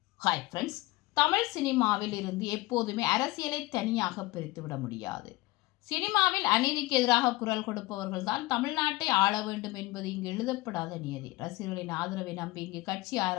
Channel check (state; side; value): quieter; right; 20.2 dB